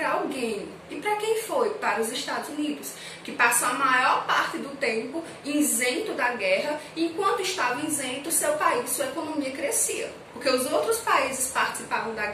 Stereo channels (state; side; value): identical; both; correlation 1.00